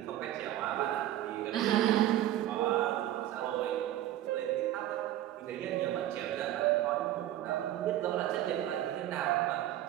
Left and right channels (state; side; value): quieter; left; 13.3 dB